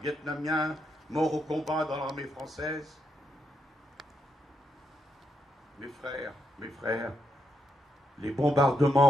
Vietnamiens morts au combat dans l'armée française. Mes frères, les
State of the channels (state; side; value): normal; both; correlation 0.81